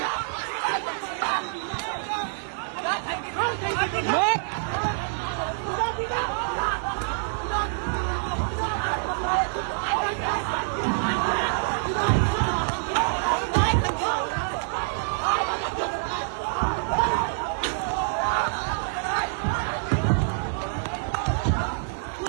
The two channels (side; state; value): left; silent; digital silence